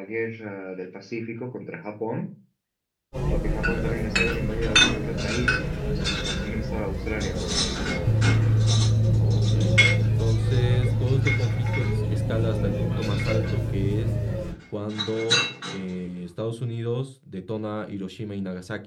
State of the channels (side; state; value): both; identical; correlation 1.00